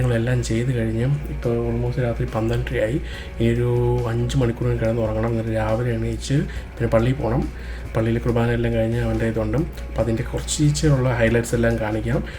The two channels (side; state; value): both; identical; correlation 1.00